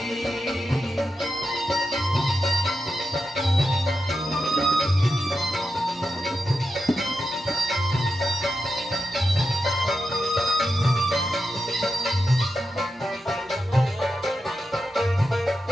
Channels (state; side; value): normal; both; correlation 0.88